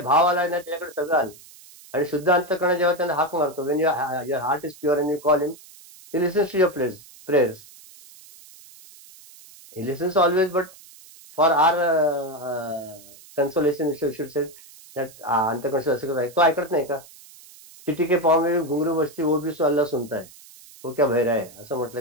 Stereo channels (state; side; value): noise; right; hiss, 22 dB below the sound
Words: भाव आला ना त्याच्याकडे सगळं आलं. आणि शुद्ध अंतकरण जेव्हा त्यांना हाक मारतो, when your heart is pure and you call him, he listens to your prayers. He listens always, but for our consolation, you should say that अंतकर्ण असं कसं आहे, तो ऐकत नाही का? चिट्टी के पाँव में घुंघरू बजती वो भी तो अल्लाह सुनता है. वो क्या बहरा है असं